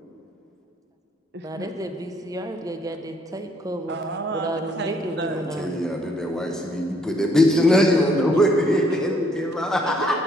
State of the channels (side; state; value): both; normal; correlation 0.67